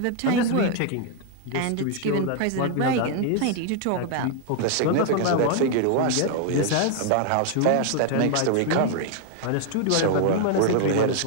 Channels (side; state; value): both; different; correlation 0.00